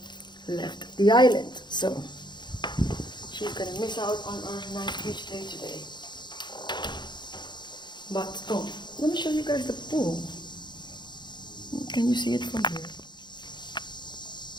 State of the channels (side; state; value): right; late; 0.21 ms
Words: left the island. So she's gonna miss out on our nice beach day today. But let me show you guys the pool. Can you see it from here?